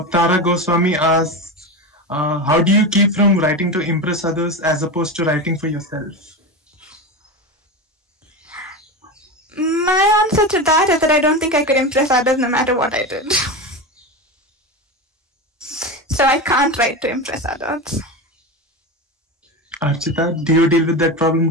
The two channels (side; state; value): both; normal; correlation 0.21